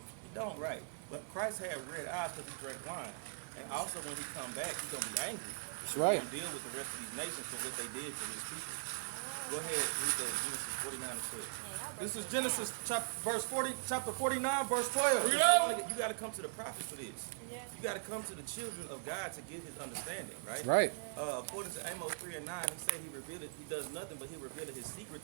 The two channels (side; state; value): left; silent; 51 dB below the other